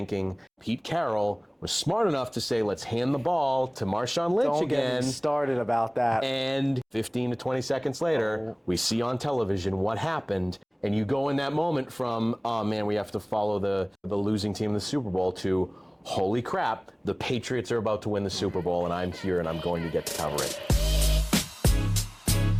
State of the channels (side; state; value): both; identical; correlation 1.00